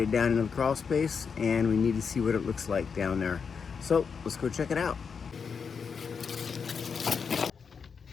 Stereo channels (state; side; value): quieter; right; 6.0 dB